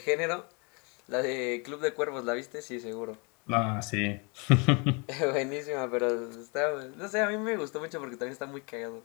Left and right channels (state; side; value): quieter; right; 32.3 dB